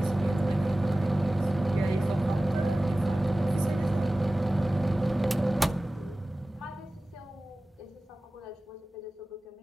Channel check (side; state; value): both; normal; correlation 0.97